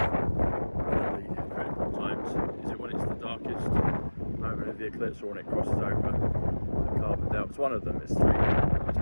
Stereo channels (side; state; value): both; inverted; correlation -1.00